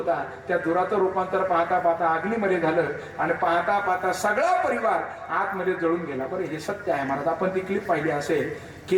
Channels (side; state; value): both; identical; correlation 1.00